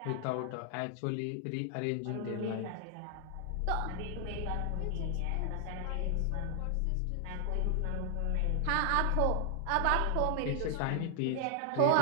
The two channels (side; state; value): both; different; correlation 0.00